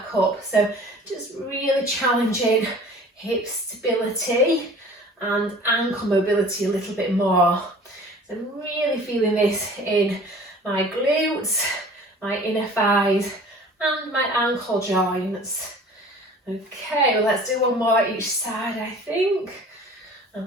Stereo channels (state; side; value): normal; both; correlation 0.46